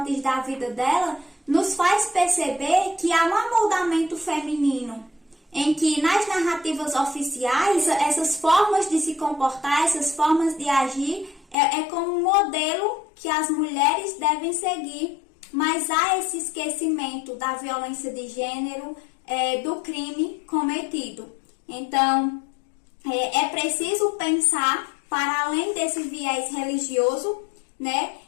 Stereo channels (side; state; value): right; drops out; at 11.6 s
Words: da vida dela nos faz perceber que há um amoldamento feminino, em que nas narrativas oficiais, essas formas de se comportar, essas formas de agir, como um modelo que as mulheres devem seguir, mas há esse esquecimento da violência de gênero, do crime cometido. Então, é preciso pensar para além desse viés religioso, né?